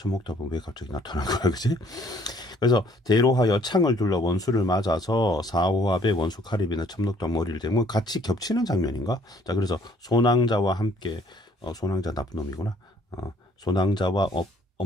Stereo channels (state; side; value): normal; both; correlation 0.61